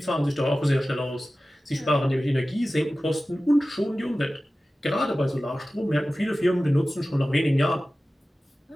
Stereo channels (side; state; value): both; normal; correlation 0.96